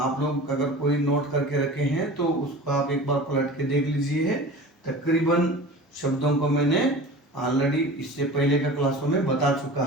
लोग अगर कोई नोट करके रखे हैं तो उसको आप एक बार पलट के देख लीजिए। तकरीबन शब्दों को मैंने ऑलरेडी इससे पहले के क्लासों में बता चुका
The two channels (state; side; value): normal; both; correlation 0.37